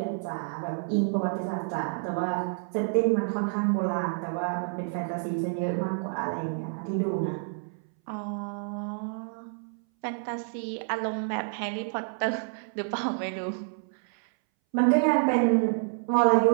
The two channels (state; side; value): silent; left; 59 dB below the other